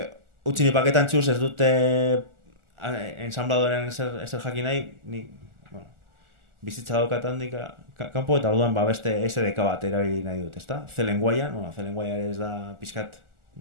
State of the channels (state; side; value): late; left; 1.4 ms